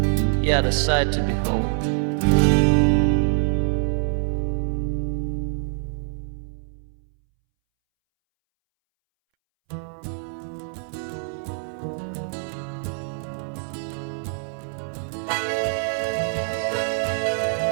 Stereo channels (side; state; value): left; silent; 62 dB below the other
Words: Yet a sight to behold.